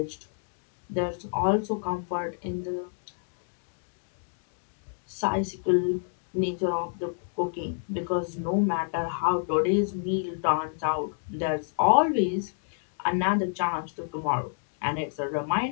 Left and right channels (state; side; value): silent; right; digital silence